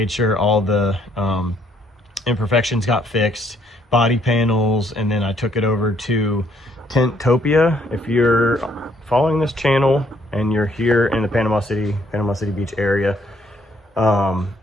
sure all the imperfections got fixed, body panels, and then I took it over to Tinttopia. If you're following this channel and you're here in the Panama City Beach area,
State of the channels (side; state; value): both; normal; correlation 0.67